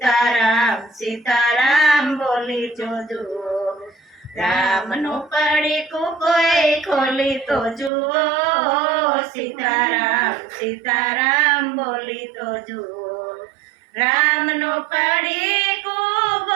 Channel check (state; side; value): drops out; left; at 7.9 s